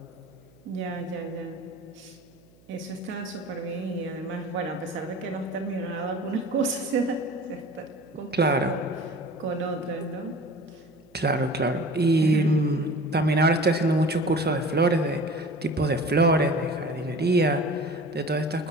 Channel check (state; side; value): noise; right; hum, 29 dB below the sound